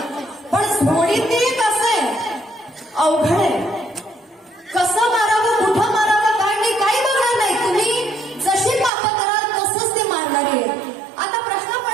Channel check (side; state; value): left; drops out; at 8.9 s